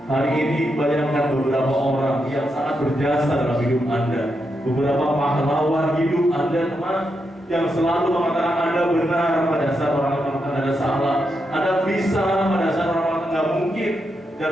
Hari ini bayangkan beberapa orang yang sangat berjasa dalam hidup Anda, beberapa pahlawan hidup Anda, teman, yang selalu mengatakan Anda benar pada saat orang mengatakan Anda salah, Anda bisa pada saat orang mengatakan nggak mungkin, dan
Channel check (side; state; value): both; normal; correlation 0.84